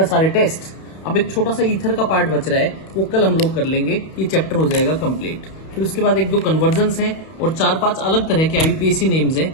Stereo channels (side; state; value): right; late; 31 ms